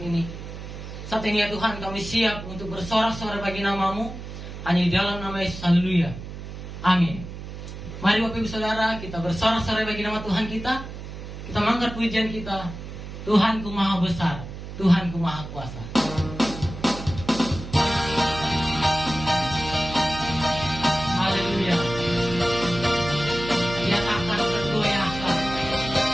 ini. Saat ini ya Tuhan, kami siap untuk bersorak-sorai bagi nama-Mu, hanya di dalam nama Yesus. Haleluya. Amin. Mari Bapak Ibu Saudara, kita bersorak-sorai bagi nama Tuhan kita. Kita mengangkat pujian kita. Tuhanku Maha Besar, Tuhanku Maha Kuasa. Haleluya. Dia akan tergoyahkan.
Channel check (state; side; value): noise; right; hum, 10 dB below the sound